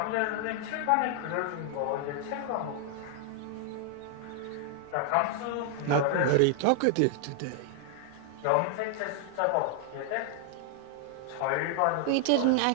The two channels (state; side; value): different; both; correlation 0.00